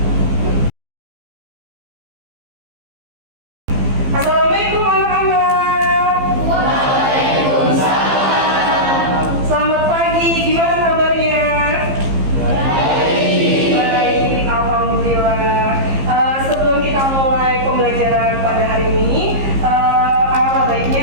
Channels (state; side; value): late; left; 15 ms